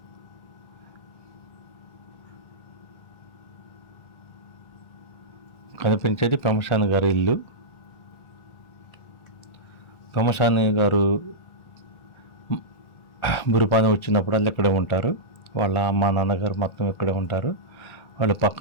కనిపించేది పెమ్మసాని గారి ఇల్లు. పెమ్మసాని గారు బురుపాని వచ్చినప్పుడల్లా ఇక్కడే ఉంటారు. వాళ్ళ అమ్మ నాన్నగారు మొత్తం ఇక్కడే ఉంటారు. వాళ్ళ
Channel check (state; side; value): late; right; 1.4 ms